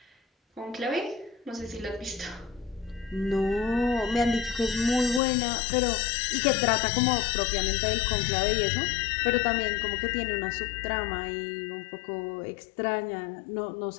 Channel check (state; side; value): drops out; right; at 5.2 s